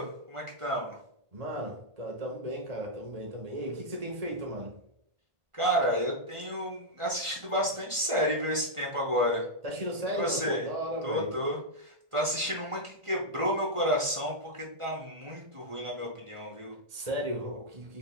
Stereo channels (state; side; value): late; left; 1.5 ms